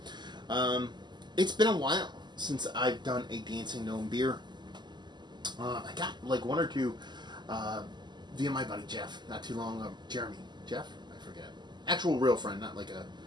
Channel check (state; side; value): late; left; 0.21 ms